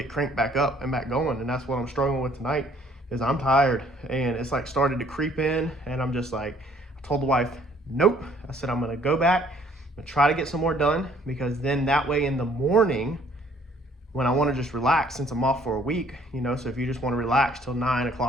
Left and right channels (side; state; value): both; normal; correlation 0.60